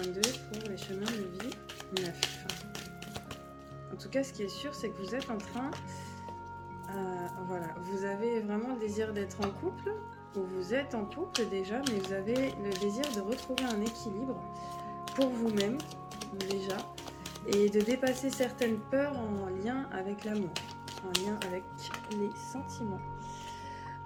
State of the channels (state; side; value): identical; both; correlation 1.00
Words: pour les chemins de vie neufs. En tout cas, ce qui est sûr, c'est que vous êtes en train, voilà, vous avez vraiment le désir d'être en couple, ou vous êtes en couple déjà, mais vous avez le désir de retrouver un équilibre pour vous-même déjà, et de dépasser certaines peurs en lien avec l'amour, en lien avec les sentiments.